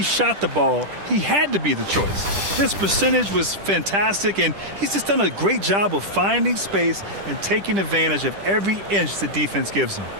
shot the ball, he had to be the choice. His percentage was fantastic, and he's just done a great job of finding space and taking advantage of every inch the defense gives him.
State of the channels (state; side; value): late; left; 10 ms